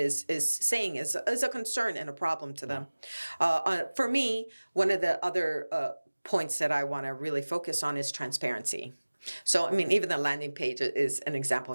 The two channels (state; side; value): inverted; both; correlation -1.00